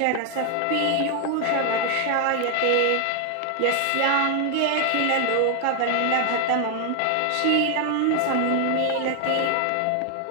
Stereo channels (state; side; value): different; both; correlation 0.00